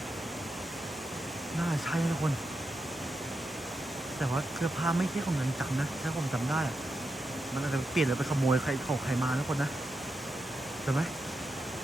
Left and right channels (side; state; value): both; normal; correlation 0.87